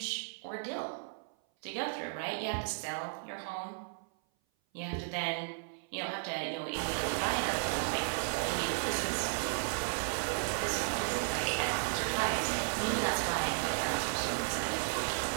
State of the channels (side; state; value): left; silent; 55 dB below the other